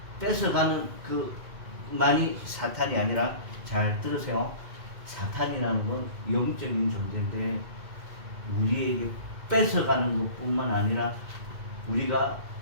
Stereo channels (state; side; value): late; left; 2.3 ms